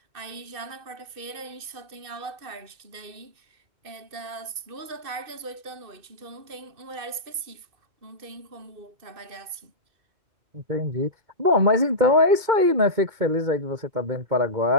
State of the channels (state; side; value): late; left; 2.6 ms